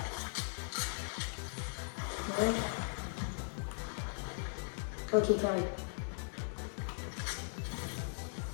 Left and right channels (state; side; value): silent; right; digital silence